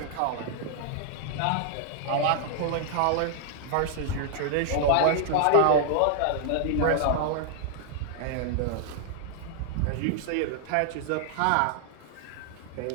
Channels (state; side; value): different; both; correlation 0.00